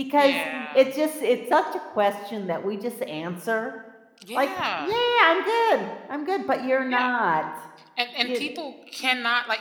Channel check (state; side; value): identical; both; correlation 1.00